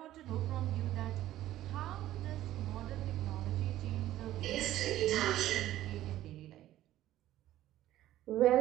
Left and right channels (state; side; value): quieter; left; 13.9 dB